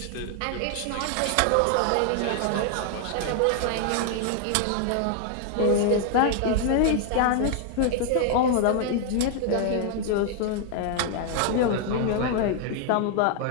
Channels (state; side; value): different; both; correlation 0.00